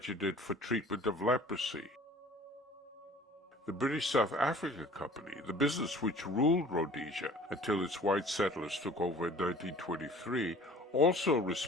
for treatment of leprosy. The British South Africa Company, the business which ruled Rhodesia until its white settlers took over in 1923, also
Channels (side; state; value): both; normal; correlation 0.48